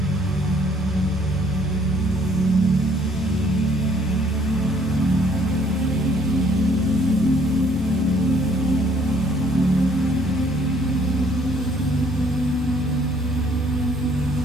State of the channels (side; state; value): both; normal; correlation 0.62